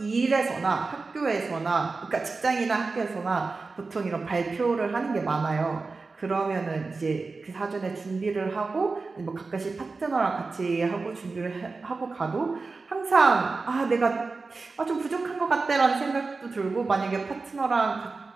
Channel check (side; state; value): left; quieter; 4.0 dB